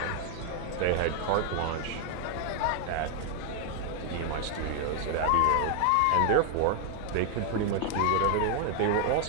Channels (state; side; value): different; both; correlation 0.00